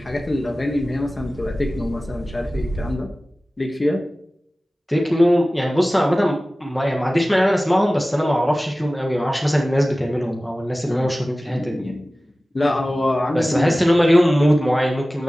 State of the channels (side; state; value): both; normal; correlation 0.97